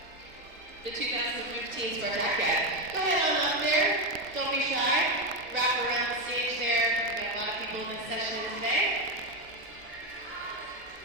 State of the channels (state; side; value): normal; both; correlation 0.10